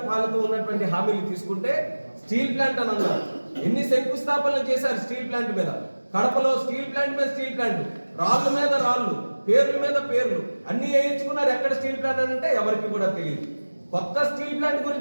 పాలనతో ఉన్నటువంటి హామీలు తీసుకుంటే స్టీల్ ప్లాంట్ అని అన్నారు. ఎన్ని శంకుస్థాపనలు చేశారు స్టీల్ ప్లాంట్ మీద? కడపలో స్టీల్ ప్లాంట్ మీద స్టీల్ ప్లాంట్, రాళ్ళ మీద రాళ్ళు, పేర్ల మీద పేర్లు అన్ని వేయించుకున్నారు. ఎక్కడ స్టీల్ ప్లాంట్ అని అంటే ఎవరికి కూడా తెలియదు. కొత్త స్టీల్ ప్లాంట్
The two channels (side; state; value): both; inverted; correlation -1.00